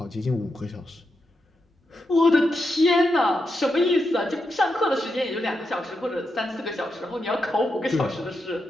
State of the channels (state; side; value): normal; both; correlation 0.85